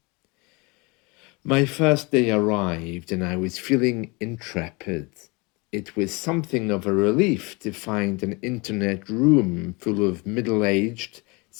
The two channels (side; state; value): right; quieter; 27.6 dB